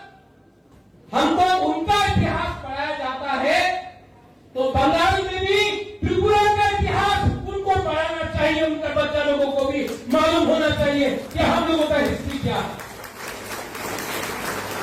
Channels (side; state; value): both; identical; correlation 1.00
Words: हमको उनका इतिहास पढ़ाया जाता है तो बंगाल में भी त्रिपुरा का इतिहास उनको पढ़ाना चाहिए, उनके बच्चा लोगों को भी मालूम होना चाहिए कि हम लोगों का हिस्ट्री क्या है।